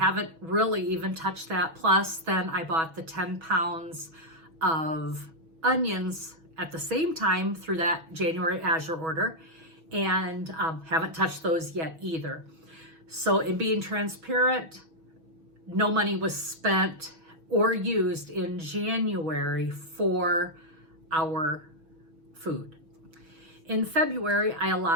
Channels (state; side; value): late; left; 6.1 ms